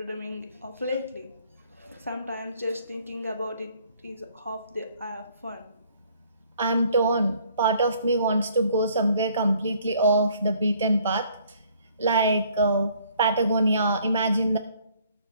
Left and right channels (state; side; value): inverted; both; correlation -0.61